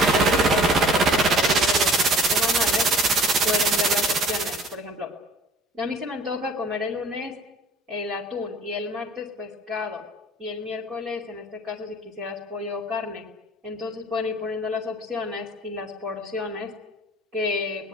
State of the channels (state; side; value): normal; both; correlation 0.50